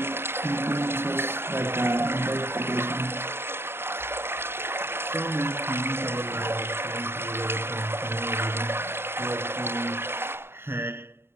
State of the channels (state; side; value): late; left; 0.11 ms